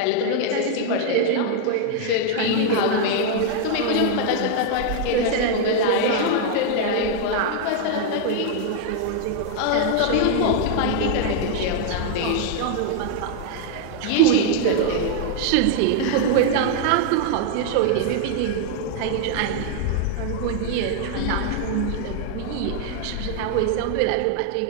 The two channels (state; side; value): different; both; correlation 0.00